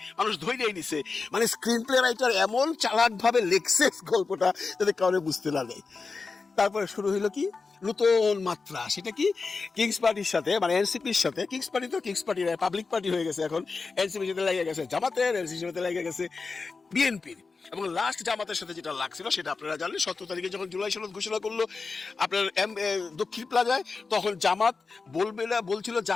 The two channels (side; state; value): right; quieter; 4.4 dB